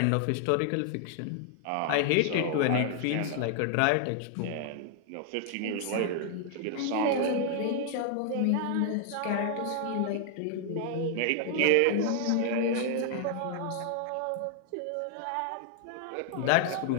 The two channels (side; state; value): both; different; correlation 0.00